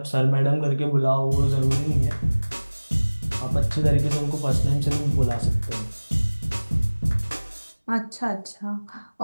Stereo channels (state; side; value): inverted; both; correlation -1.00